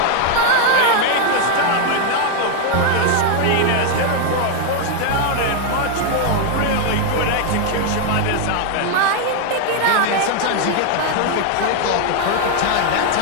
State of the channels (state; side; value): different; both; correlation 0.01